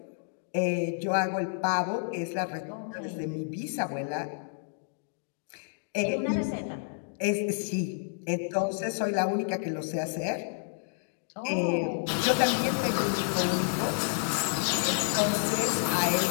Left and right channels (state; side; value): silent; right; digital silence